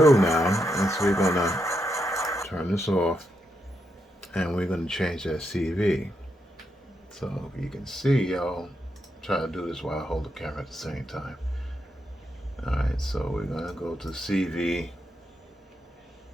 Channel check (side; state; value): both; normal; correlation 0.82